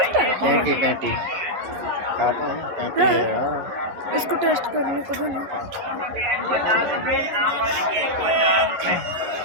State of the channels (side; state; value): left; late; 11 ms